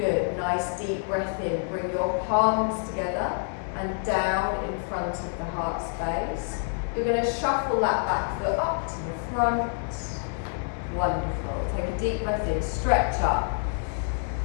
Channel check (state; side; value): silent; right; 58 dB below the other